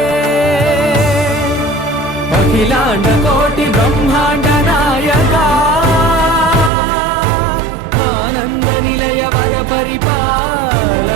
అఖిలాండ కోటి బ్రహ్మాండ నాయక ఆనంద నిలయ వర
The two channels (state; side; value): drops out; left; at 6.7 s